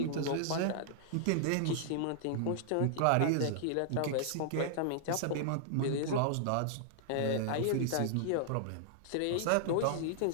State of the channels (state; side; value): different; both; correlation -0.01